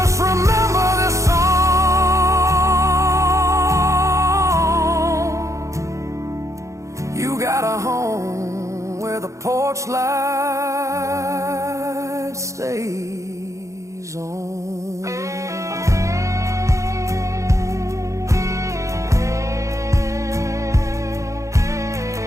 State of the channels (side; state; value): left; late; 0.15 ms